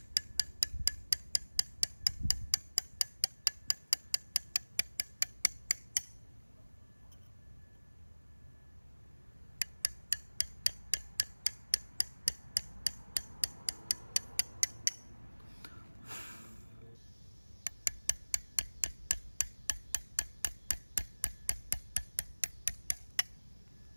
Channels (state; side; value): inverted; both; correlation -1.00